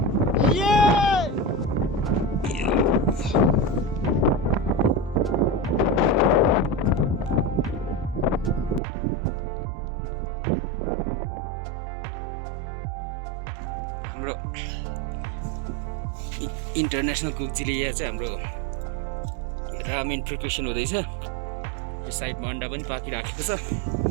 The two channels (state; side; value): drops out; left; at 8.8 s